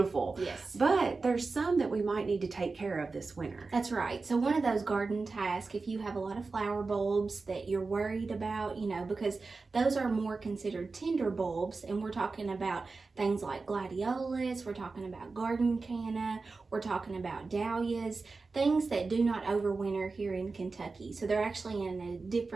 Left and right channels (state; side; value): quieter; left; 4.0 dB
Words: Yes. But there's some that we might need to take care of this winter. That's right. So one of those garden tasks, if you have a lot of flower bulbs that you're worried about, because those are more considered tender bulbs, and we're talking about things like gladiolus, we're talking about garden canna, we're talking about dahlias, things that do not overwinter here in Kentucky. So they're actually in a